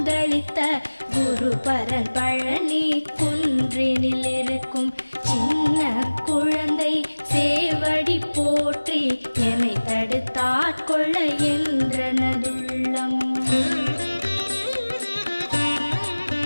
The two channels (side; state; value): both; inverted; correlation -1.00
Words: குருபரன் பழனி குன்றினில் இருக்கும் சின்ன குழந்தை சேவடி போற்றி என்னை தடுத்தாட்கொள்ள என்றனதுள்ளம்.